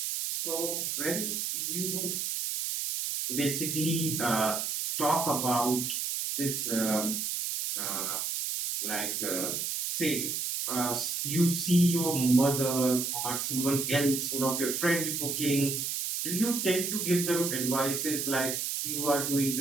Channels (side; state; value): right; noise; hiss, 1 dB below the sound